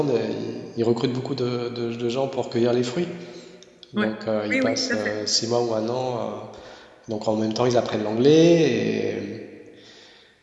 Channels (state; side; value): identical; both; correlation 1.00